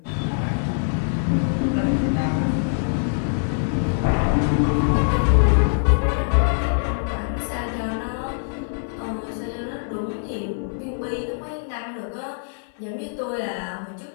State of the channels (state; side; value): silent; right; 57 dB below the other